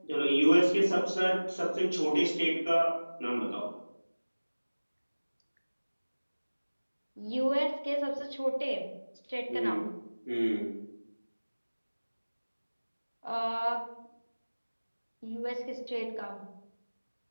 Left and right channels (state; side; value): inverted; both; correlation -1.00